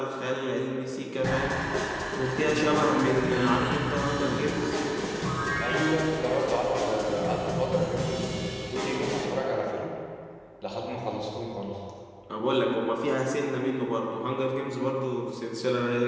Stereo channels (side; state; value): both; identical; correlation 1.00